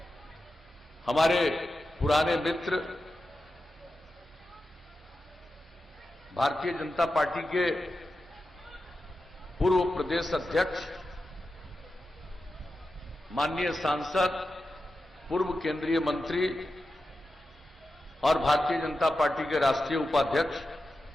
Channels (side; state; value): both; normal; correlation 0.91